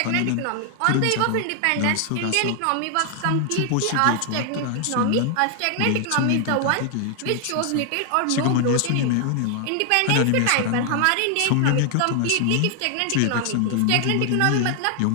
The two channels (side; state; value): both; different; correlation 0.00